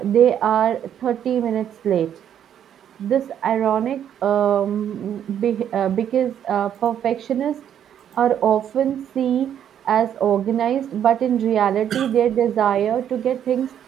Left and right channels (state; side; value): quieter; left; 9.6 dB